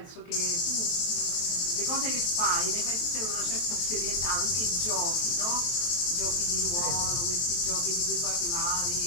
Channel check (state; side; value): late; right; 23 ms